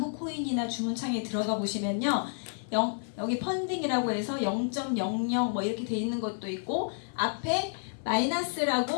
코인이나 주문창에 들어가 보시면요. 여기 펀딩이라고 해서 0.00 뭐 이렇게 돼 있는 것도 있고 앞에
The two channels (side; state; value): right; silent; 58 dB below the other